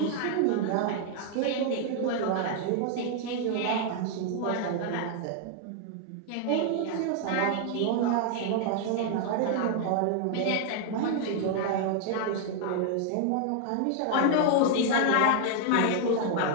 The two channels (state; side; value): different; both; correlation 0.00